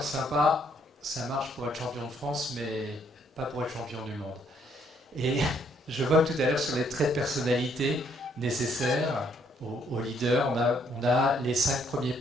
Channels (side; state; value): both; normal; correlation 0.68